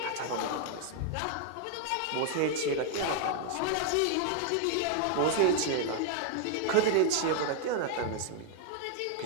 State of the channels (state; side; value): different; both; correlation 0.00